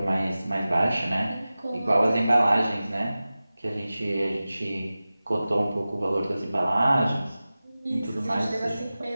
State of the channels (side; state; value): both; inverted; correlation -0.96